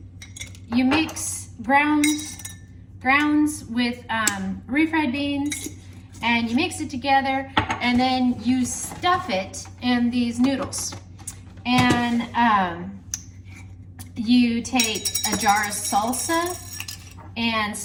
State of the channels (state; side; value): identical; both; correlation 1.00